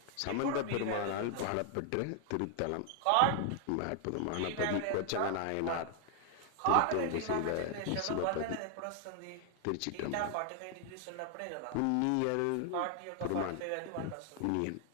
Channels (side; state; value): both; different; correlation 0.00